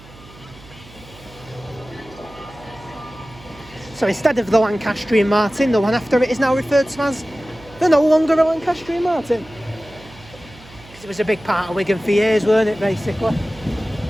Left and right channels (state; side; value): noise; right; hum, 21 dB below the sound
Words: So instead of the Lancastrian Martin, the one after it is now referred to as the no longer a Lancastrian Martin. Because it was a big part of Wigan for years, weren't it, basically?